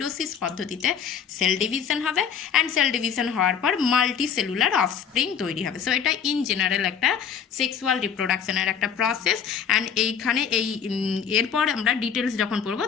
পদ্ধতিতে সেল ডিভিশন হবে, অ্যান্ড সেল ডিভিশন হওয়ার পর মাল্টি সেলুলার অফস্প্রিং তৈরি হবে। সো এটা ইন জেনারেল একটা সেক্সুয়াল রিপ্রোডাকশনের একটা প্রসেস। অ্যান্ড এইখানে এরপর আমরা ডিটেলস যখন পড়বো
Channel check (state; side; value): quieter; right; 7.6 dB